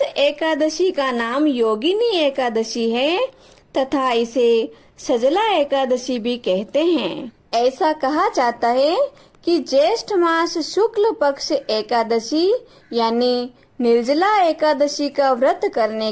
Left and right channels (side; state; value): both; identical; correlation 1.00